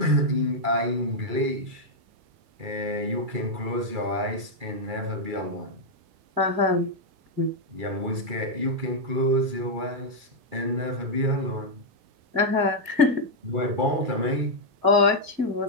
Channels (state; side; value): late; left; 2.3 ms